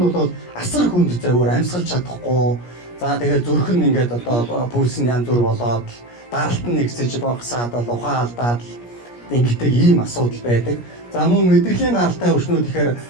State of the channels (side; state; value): right; late; 17 ms